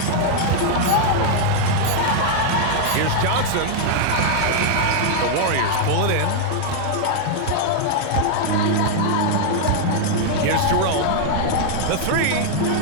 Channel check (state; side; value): different; both; correlation 0.00